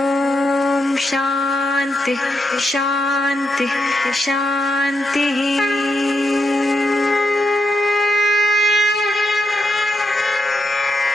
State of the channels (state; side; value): normal; both; correlation 0.83